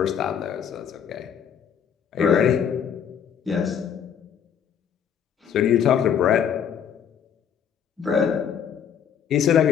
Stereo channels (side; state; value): right; quieter; 8.2 dB